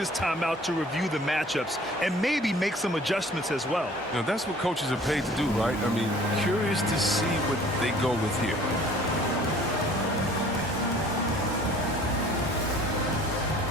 timeout to review the matchups and maybe make some adjustments as well. You know, that's what coaches are paid to do, right? I mean, curious to see what they go with here.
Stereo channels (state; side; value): normal; both; correlation 0.52